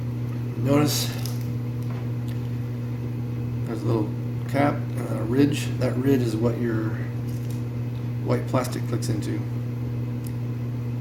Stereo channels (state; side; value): identical; both; correlation 1.00